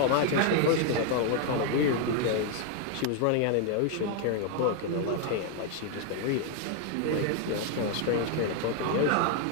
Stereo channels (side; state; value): both; different; correlation 0.00